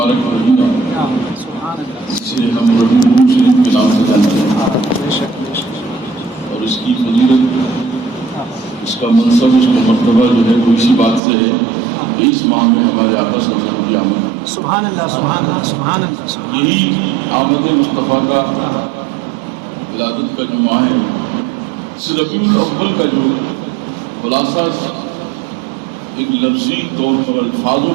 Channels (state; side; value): drops out; left; at 11.2 s